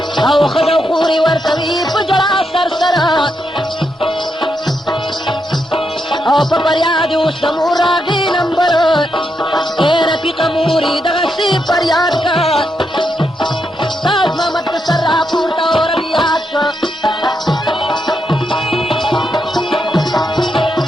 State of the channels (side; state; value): both; normal; correlation 0.82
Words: او ښځه خورې ورکوي په ژړا سر سره او په فریاد اوس د مور راغی نمبر ای رفیقه مورې دغسې فریاد کا تاج محمد د سر راپورته او ربیات کا